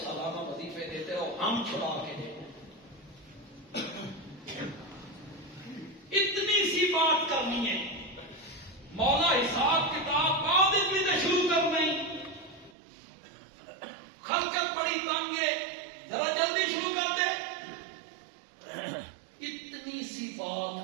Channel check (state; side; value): drops out; left; at 12.7 s